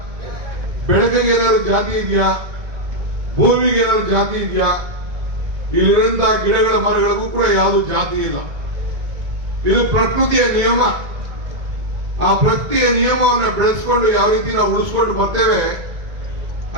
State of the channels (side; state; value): left; late; 2.2 ms